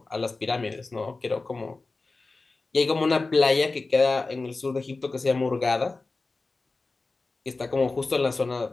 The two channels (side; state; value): right; quieter; 3.6 dB